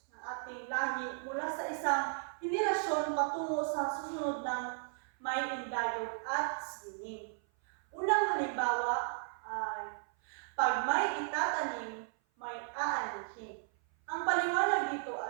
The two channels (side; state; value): left; silent; 54 dB below the other